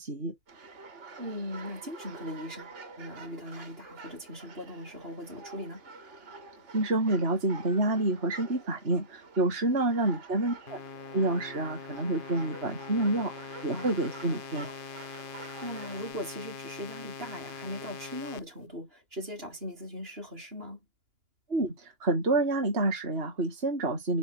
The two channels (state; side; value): late; left; 2.9 ms